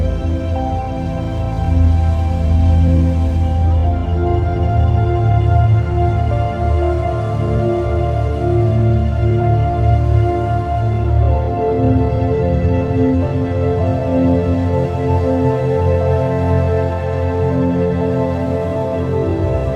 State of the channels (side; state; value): both; identical; correlation 1.00